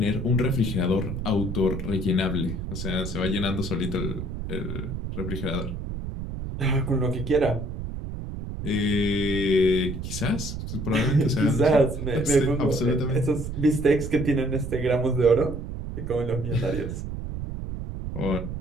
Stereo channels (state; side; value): noise; right; rumble, 6 dB below the sound